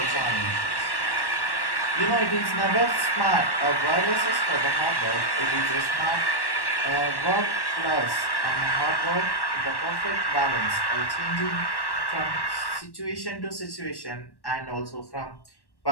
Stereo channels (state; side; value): late; right; 1.1 ms